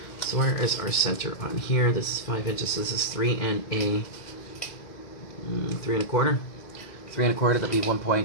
So where is our center on here? This is 5 inches. This is 3 and a 3 1/4. 3 1/4, that'd be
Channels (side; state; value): right; late; 2.0 ms